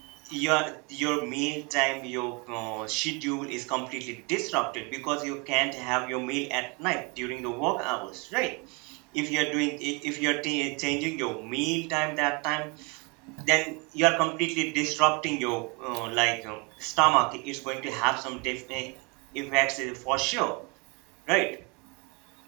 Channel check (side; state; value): left; quieter; 30.4 dB